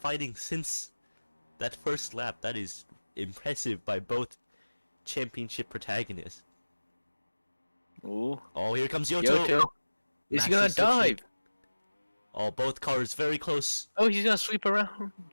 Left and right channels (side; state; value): both; inverted; correlation -1.00